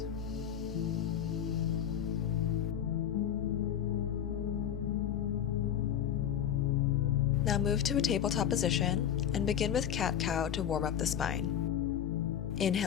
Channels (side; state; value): right; quieter; 9.6 dB